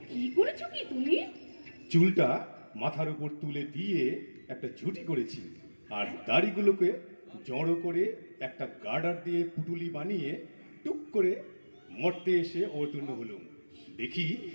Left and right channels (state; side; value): inverted; both; correlation -1.00